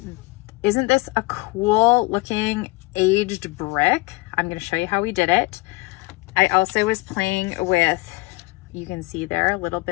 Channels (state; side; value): quieter; right; 23.4 dB